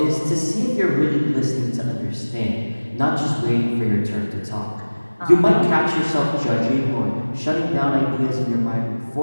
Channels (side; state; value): both; inverted; correlation -1.00